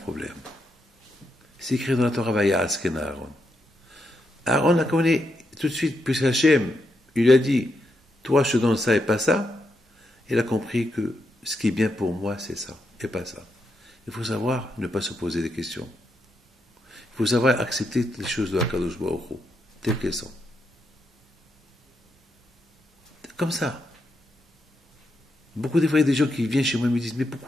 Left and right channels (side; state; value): both; normal; correlation 0.82